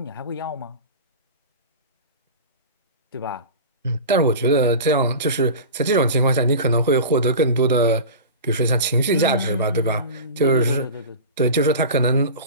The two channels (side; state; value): both; inverted; correlation -0.31